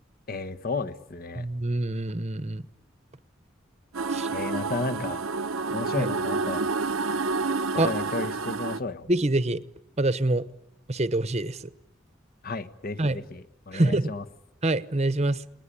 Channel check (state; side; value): normal; both; correlation 0.47